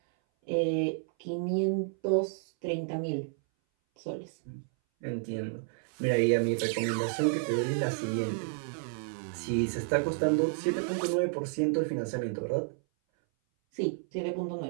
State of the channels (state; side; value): silent; left; 57 dB below the other